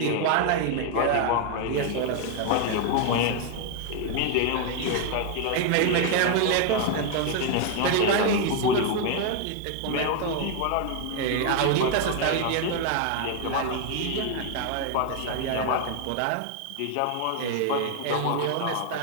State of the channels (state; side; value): different; both; correlation 0.00